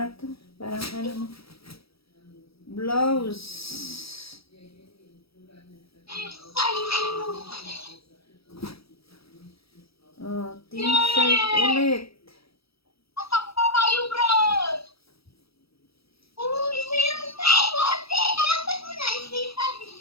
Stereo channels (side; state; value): right; late; 0.77 ms